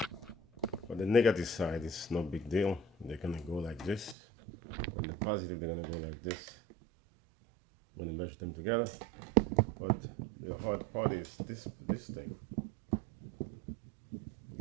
for the negative side it's no big deal. They're gonna go like this, and the positive they're gonna go like this when you mesh them together. But the hard part is this thing,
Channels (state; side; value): drops out; left; at 4.2 s